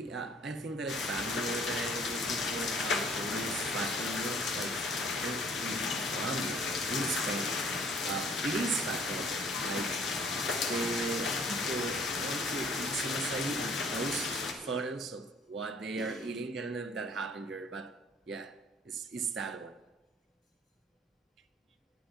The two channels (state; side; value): normal; both; correlation 0.56